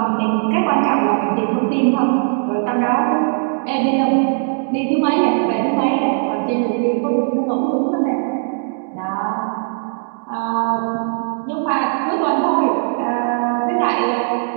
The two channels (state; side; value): silent; left; 63 dB below the other